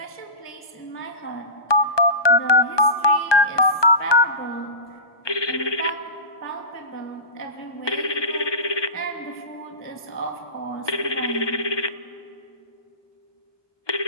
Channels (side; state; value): right; late; 1.2 ms